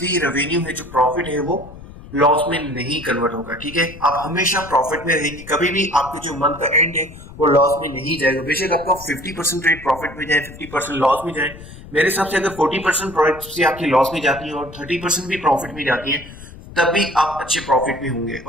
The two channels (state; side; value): noise; left; rumble, 17 dB below the sound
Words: रेवेन्यू है, जो प्रॉफिट है, वो लॉस में नहीं कन्वर्ट होगा. ठीक है, आप हमेशा प्रॉफिट में रहेंगे. कभी भी आपके जो मंथ का एंड है वो लॉस में नहीं जाएगा. बेशक आपका 50% रेट प्रॉफिट में जाए, 50% लॉस में जाए. मेरे हिसाब से अगर 40% प्रॉफिट से आपकी लॉस में जाती है और 30% भी प्रॉफिट में जाती है, तब भी आप अच्छे प्रॉफिट में होंगे.